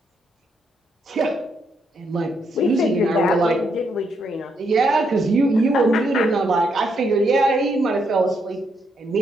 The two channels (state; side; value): normal; both; correlation 0.77